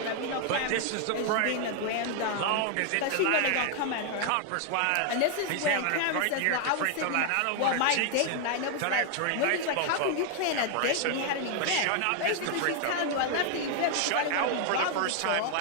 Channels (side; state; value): both; different; correlation 0.00